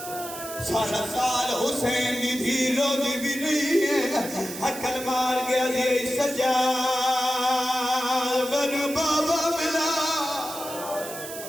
سارا سال حسین دی دھی رو دی بھی نہیں ہے عقل مار گیا دی سجاد بنو بابا ملا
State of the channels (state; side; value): noise; right; hiss, 11 dB below the sound